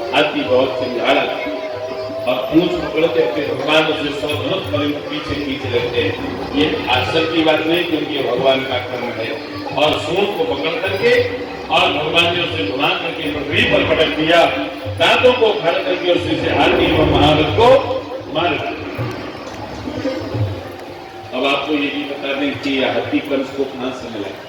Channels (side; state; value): both; identical; correlation 1.00